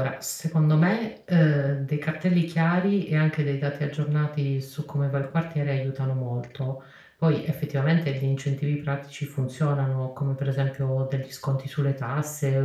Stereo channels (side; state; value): both; identical; correlation 1.00